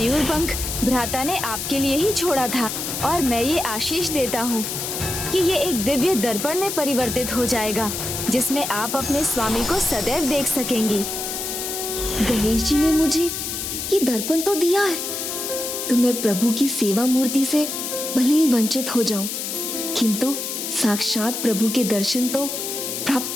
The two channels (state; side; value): noise; left; hiss, 4 dB below the sound